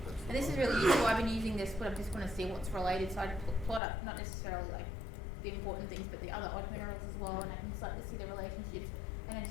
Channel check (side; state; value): right; drops out; at 3.8 s